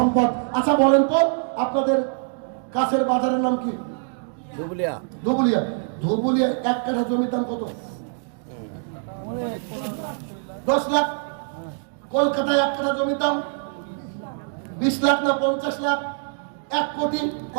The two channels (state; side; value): silent; left; 61 dB below the other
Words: আচ্ছা বলেন তো, আপনাদের কাছের বাজারের নাম কি? ধুবুলিয়া। ধুবুলিয়া। ধুবুলিয়া 1 কাঠা জমির দাম কত? 10 লাখ। কলকাতায় 1 কাঠা জমির দাম 20 লাখ না 50 লাখ? 1 কোটি।